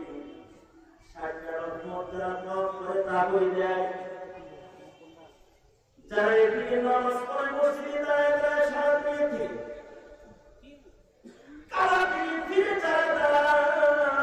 60টা রহমত দ্বারা করে তা বই দেয়। যারা এদিকে নামাজ পড়ে মসজিদে দাঁড়ায় সারা পেয়েছে, কারা ফিরে দাঁড়ায়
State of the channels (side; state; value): both; identical; correlation 1.00